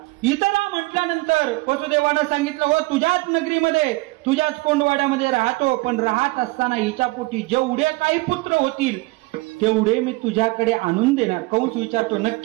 इथं राहा म्हटल्यानंतर वसुदेवानं सांगितलं, हो तुझ्याच नगरीमध्ये, तुझ्याच कोंडवाड्यामध्ये राहतो, पण राहत असताना हिच्या पोटी जेवढे काही पुत्र होतील तेवढे मी तुझ्याकडे आणून देणार. कंस विचारतो,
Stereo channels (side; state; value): left; quieter; 23.6 dB